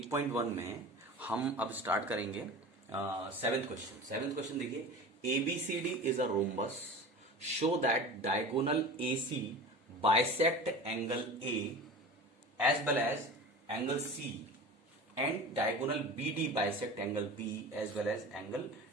में हम अब स्टार्ट करेंगे सेवेंथ क्वेश्चन। सेवेंथ क्वेश्चन देखिए, ABCD is a rhombus, show that diagonal AC bisect angle A as well as angle C and diagonal BD bisect angle B as well as angle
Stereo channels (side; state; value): both; normal; correlation 0.34